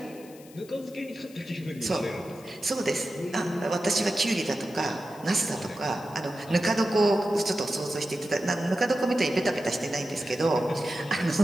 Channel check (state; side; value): noise; left; hiss, 23 dB below the sound